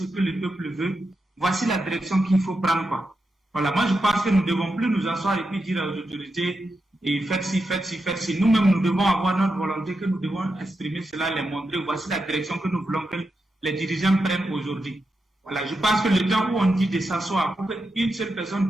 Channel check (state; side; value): normal; both; correlation 0.87